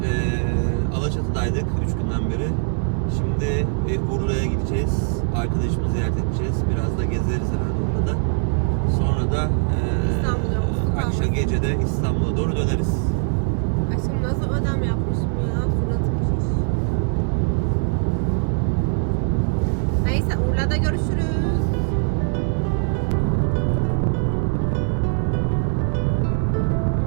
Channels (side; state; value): left; silent; 64 dB below the other